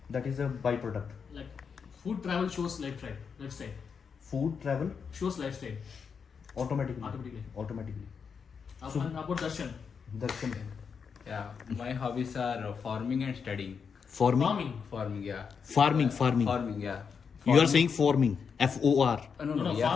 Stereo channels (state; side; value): quieter; right; 6.2 dB